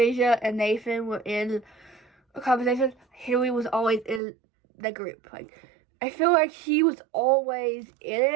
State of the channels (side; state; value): left; drops out; at 4.2 s